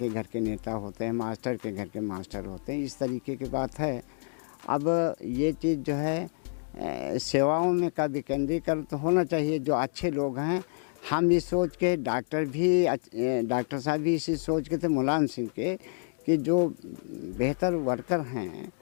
घर के नेता होते हैं, मास्टर के घर के मास्टर होते हैं, इस तरीके की बात है। अब ये चीज़ जो है सेवाओं में का विकेंद्रीकरण तो होना चाहिए। जो अच्छे लोग हैं, हम इस सोच के, डॉक्टर साहब भी इसी सोच के थे मुलायम सिंह के, कि जो बेहतर वर्कर हैं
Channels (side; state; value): right; silent; digital silence